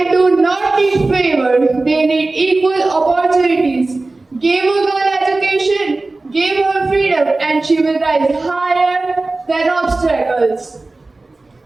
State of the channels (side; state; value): left; quieter; 3.2 dB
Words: do not need favor, they need equal opportunities. Give a girl education, give her freedom, and she will rise higher than obstacles.